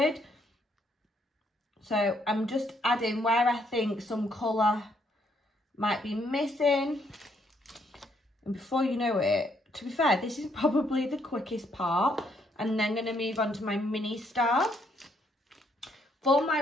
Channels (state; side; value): normal; both; correlation 0.72